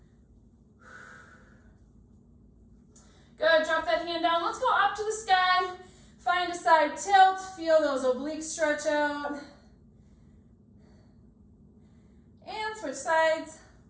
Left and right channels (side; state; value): both; identical; correlation 1.00